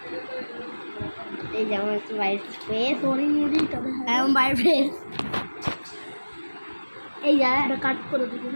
এই যে আমার বাইরের স্পেস এমন বাইরের ফেস এই যে কাট করে দিবি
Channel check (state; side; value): inverted; both; correlation -1.00